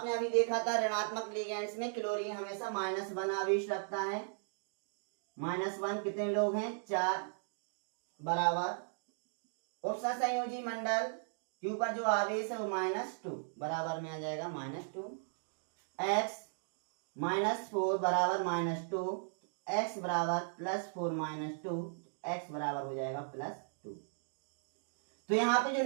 अभी देखा था ऋणात्मक लिगेंड्स में क्लोरीन हमेशा -1 आवेश रखता है। -1 कितने लोग हैं 4 बराबर उपसंयोजी मंडल के ऊपर जो आवेश है वो -2 बराबर में आ जाएगा -2। X -4 बराबर -2, X बराबर +4 -2, X बराबर हो जाएगा +2। तो यहाँ पे जो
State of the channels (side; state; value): left; silent; digital silence